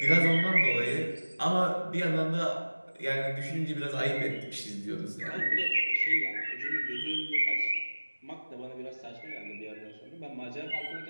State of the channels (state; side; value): inverted; both; correlation -1.00